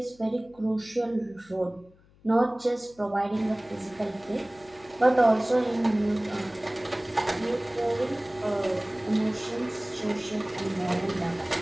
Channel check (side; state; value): left; noise; hum, 29 dB below the sound